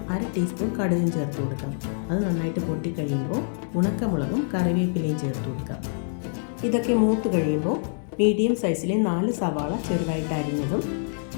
1/2 ടീസ്പൂൺ കടുകും ചേർത്ത് കൊടുക്കാം. അത് നന്നായിട്ട് പൊട്ടിക്കഴിയുമ്പോൾ ഉണക്കമുളകും കറിവേപ്പിലയും ചേർത്ത് കൊടുക്കാം. ഇതൊക്കെ മൂത്ത് കഴിയുമ്പോൾ മീഡിയം സൈസിലെ 4 സവാള ചെറുതായിട്ട് അരിഞ്ഞതും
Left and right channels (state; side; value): silent; right; digital silence